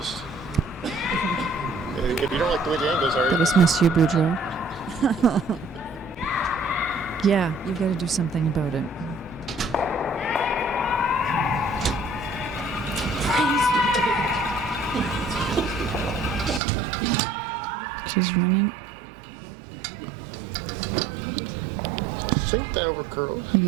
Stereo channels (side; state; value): left; drops out; at 16.6 s